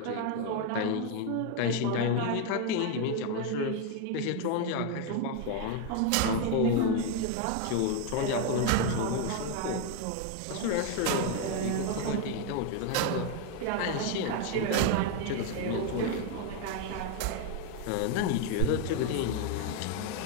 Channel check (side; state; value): both; different; correlation 0.01